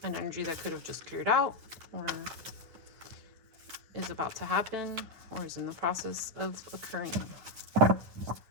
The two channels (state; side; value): late; left; 9.6 ms